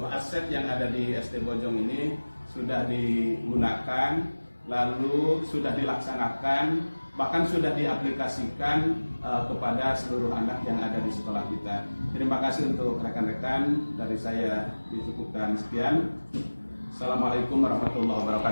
aset yang ada di SD Bojong ini sudah digunakan, lalu sudah dilaksanakan, bahkan sudah diaplikasikan kepada seluruh anak yang ada di sekolah kita. Terima kasih untuk rekan-rekan, dari saya dicukupkan sekian. Assalamualaikum warahmatullahi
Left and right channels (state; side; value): inverted; both; correlation -1.00